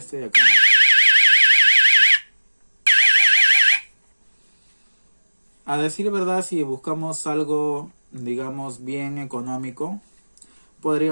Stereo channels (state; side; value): inverted; both; correlation -1.00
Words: de acá. A decir verdad, si buscamos algo, digamos, bien económico,